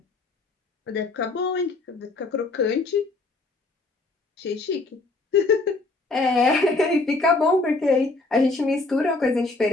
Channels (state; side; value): quieter; right; 3.4 dB